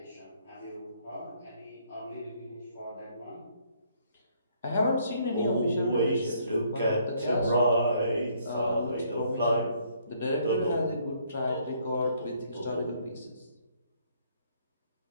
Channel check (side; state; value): both; inverted; correlation -0.66